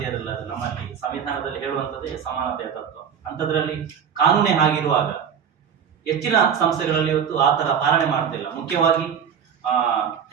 ನಮ್ಮಲ್ಲಿ ಸಂವಿಧಾನದಲ್ಲಿ ಹೇಳುವಂಥದ್ದೇ ಸಮಾನತೆಯ ತತ್ವ. ಅಂಥದ್ರಲ್ಲಿ ಕಾನೂನೇ ಆಗಿರುವಾಗ ಹೆಚ್ಚಿನ ಸಂಸ್ಥೆಗಳಲ್ಲಿ ಇವತ್ತು ಆ ತರ ಪಾಲನೆ ಮಾಡ್ತಿಲ್ಲ. ಮುಖ್ಯವಾಗಿ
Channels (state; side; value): quieter; left; 7.8 dB